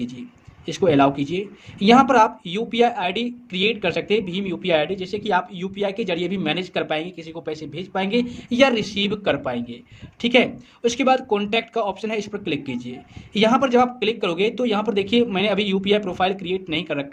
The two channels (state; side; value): identical; both; correlation 1.00